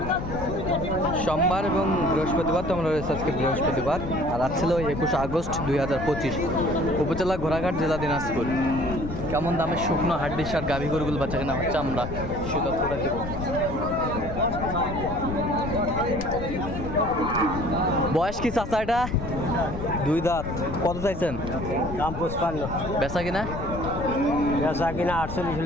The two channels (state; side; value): noise; left; rumble, 7 dB below the sound